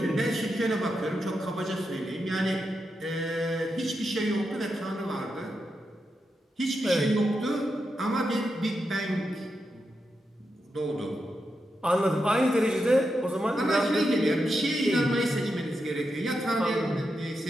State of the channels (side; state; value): both; normal; correlation 0.86